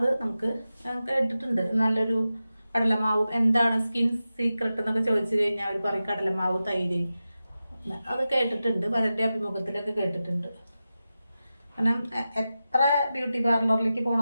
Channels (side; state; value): both; inverted; correlation -0.93